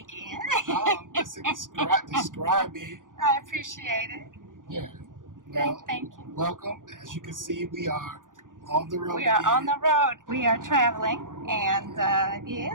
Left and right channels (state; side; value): late; left; 0.88 ms